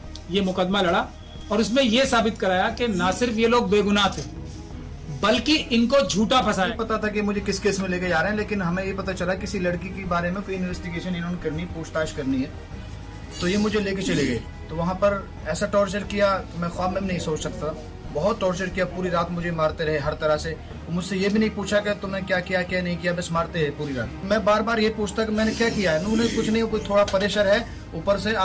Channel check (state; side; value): identical; both; correlation 1.00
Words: ये मुकदमा लड़ा और उसमें यह साबित कराया कि ना सिर्फ ये लोग बेगुनाह थे, बल्कि इनको झूठा फंसाया। पता था कि मुझे किस केस में लेके जा रहे हैं, लेकिन हमें ये पता चला किसी लड़की के बारे में कोई इन्वेस्टिगेशन इन्होंने करनी, पूछताछ करनी है, तो ये मुझे लेके चले गए। तो वहाँ पर ऐसा टॉर्चर किया तो मैं ख्वाब में नहीं सोच सकता। बहुत टॉर्चर किया, पूरी रात मुझे मारते रहे हर तरह से। मुझसे ये भी नहीं पूछा कि तुमने क्या किया क्या नहीं किया, बस मारते रहे पूरी रात। मैं बार बार ये पूछता कि मैंने क्या किया है। उन्होंने कुछ नहीं, कोई थोड़ा प्रेशर है ऊपर से,